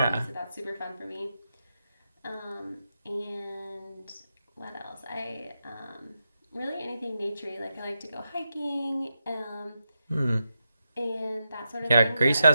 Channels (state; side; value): inverted; both; correlation -0.87